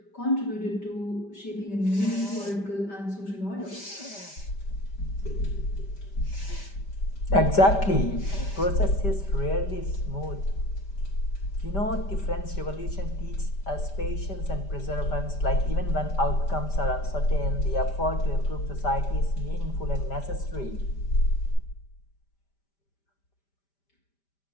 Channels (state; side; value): late; right; 5.1 ms